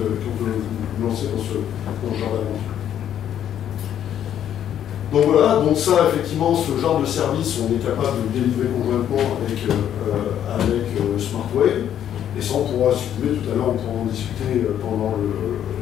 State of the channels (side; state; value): right; quieter; 10.2 dB